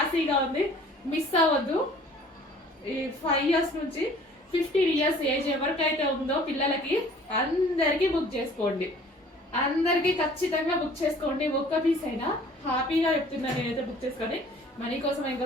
ఉంది. మిస్ అవ్వద్దు. ఈ 5 years నుంచి 15 years ఏజ్ ఎవరికైతే ఉందో పిల్లలకి అందరికి బుక్ చేసుకోండి. అందరికి ఖచ్చితంగా బుక్ చేసుకోండి. ఒక్క పీస్ అయినా హ్యాపీగా చెప్తున్నా నేనైతే బుక్ చేసుకోండి. మనీ కోసం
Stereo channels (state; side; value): normal; both; correlation 0.52